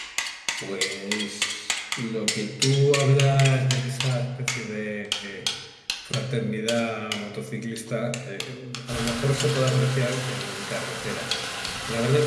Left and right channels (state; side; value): identical; both; correlation 1.00